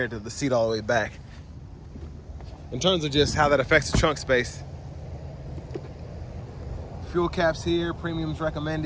to the seat all the way back, in terms of just how that affects the trunk space. Fuel caps here, premiums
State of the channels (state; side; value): identical; both; correlation 1.00